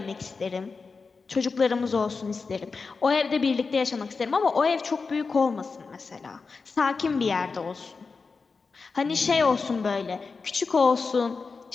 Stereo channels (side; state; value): right; quieter; 4.6 dB